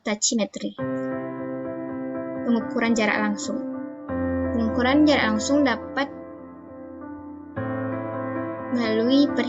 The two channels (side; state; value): both; identical; correlation 1.00